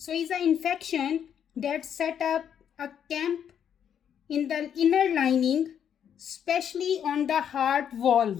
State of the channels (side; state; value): right; quieter; 8.7 dB